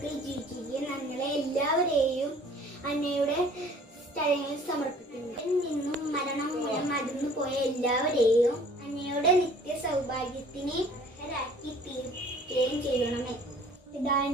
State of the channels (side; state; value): both; normal; correlation 0.52